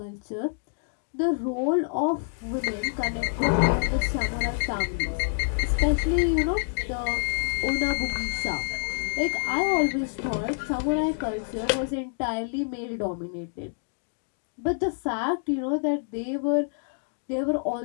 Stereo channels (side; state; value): right; silent; digital silence